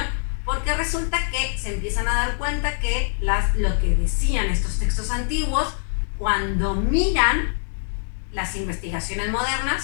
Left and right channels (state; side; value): silent; right; digital silence